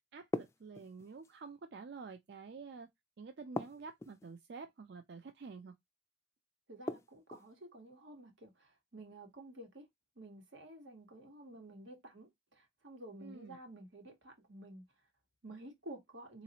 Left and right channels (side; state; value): both; normal; correlation 0.50